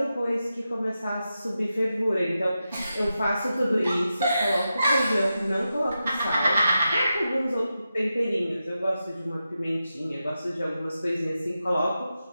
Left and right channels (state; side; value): inverted; both; correlation -0.90